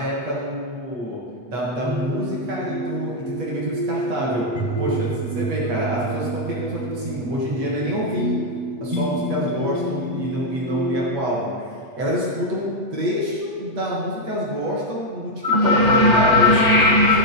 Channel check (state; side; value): late; left; 8.3 ms